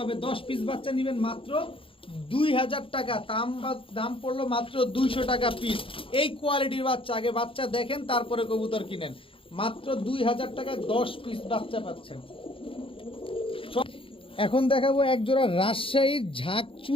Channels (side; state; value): right; late; 0.26 ms